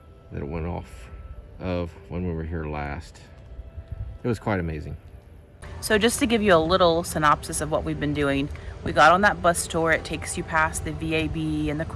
that it went off of when we were here last. It was quite amazing. So just to give you a little synopsis of what we've been doing, we got on that bus tour. It takes you past the VAB and the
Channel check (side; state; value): both; identical; correlation 1.00